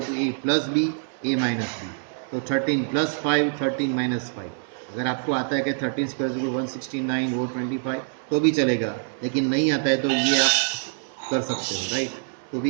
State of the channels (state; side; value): silent; left; digital silence